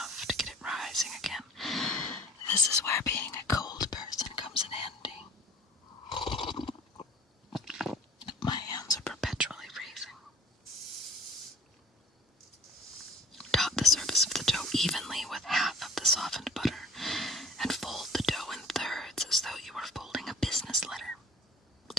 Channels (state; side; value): normal; both; correlation 0.50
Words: to get it rising again. This is where being a cold person comes in handy. My hands are perpetually freezing. Dot the surface of the dough evenly with half of the softened butter and fold the dough in thirds as though you were folding a business letter.